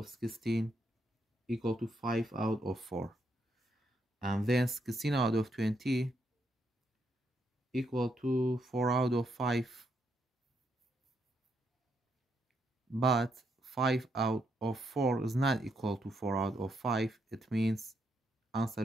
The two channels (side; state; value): both; normal; correlation 0.77